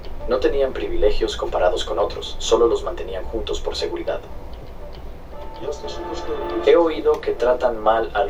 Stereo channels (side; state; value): both; identical; correlation 1.00